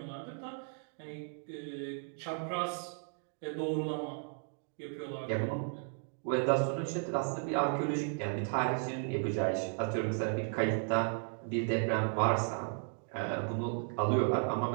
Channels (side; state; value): left; silent; 54 dB below the other